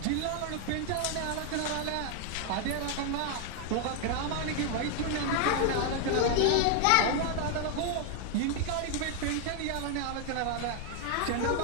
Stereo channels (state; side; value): different; both; correlation 0.00